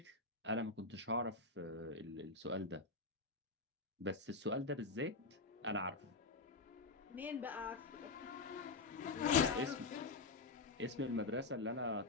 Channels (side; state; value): right; quieter; 3.7 dB